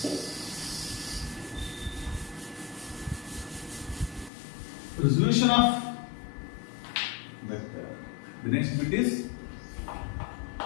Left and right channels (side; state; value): right; drops out; at 4.3 s